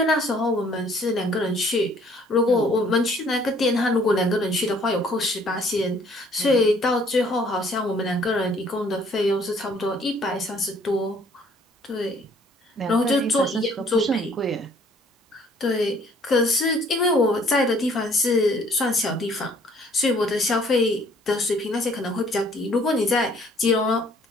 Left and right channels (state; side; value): normal; both; correlation 0.59